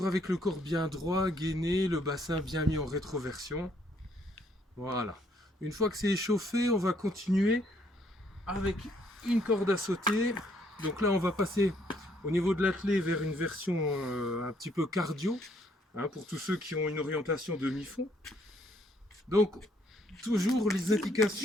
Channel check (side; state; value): both; normal; correlation 0.68